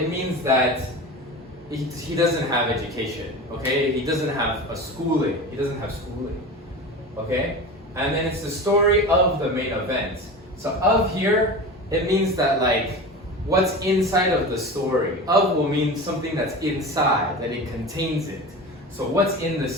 means that he doesn't have education. Okay? He doesn't have a schooling. He doesn't have schooling. Okay? And then it's the story of the main event. So of here, it means that like what's inside of the story. Of will mean something that's inside, that it contains it. So what's in the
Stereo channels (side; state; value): both; normal; correlation 0.30